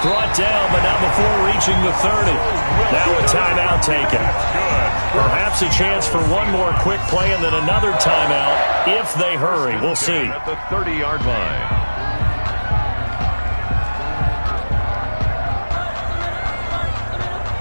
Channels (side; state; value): both; inverted; correlation -1.00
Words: down, but not before reaching the 30. Now a timeout taken. Perhaps a chance for one more quick play and then another timeout if they hurry. We'll see. At the 30-yard line.